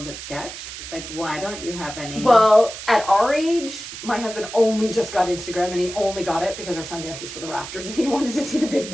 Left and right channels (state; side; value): noise; right; hiss, 11 dB below the sound